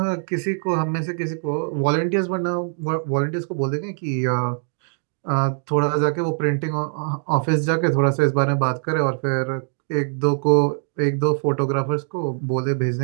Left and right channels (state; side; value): silent; left; 55 dB below the other